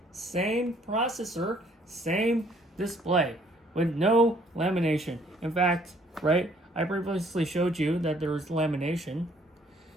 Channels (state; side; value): normal; both; correlation 0.62